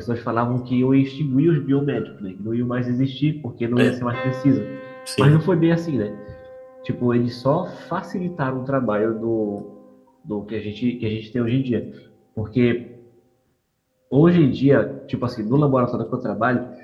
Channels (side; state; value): both; identical; correlation 1.00